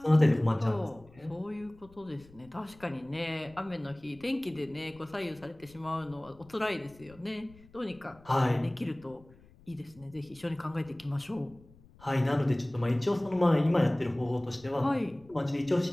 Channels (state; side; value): noise; left; rumble, 25 dB below the sound